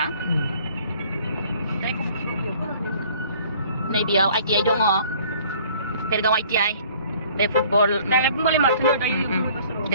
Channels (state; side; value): inverted; both; correlation -0.54